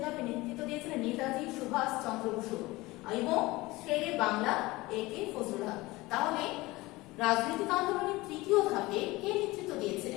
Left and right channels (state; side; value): quieter; right; 20.7 dB